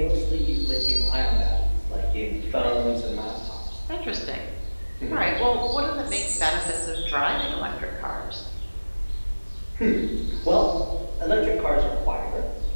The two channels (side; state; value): both; inverted; correlation -1.00